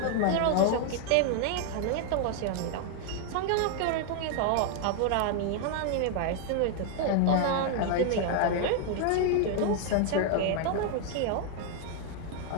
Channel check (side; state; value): both; different; correlation 0.00